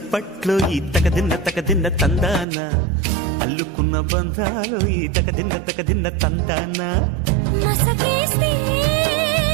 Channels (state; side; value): drops out; left; at 2.5 s